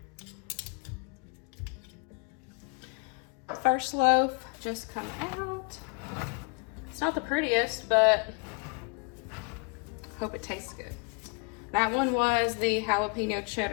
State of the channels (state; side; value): quieter; right; 32.6 dB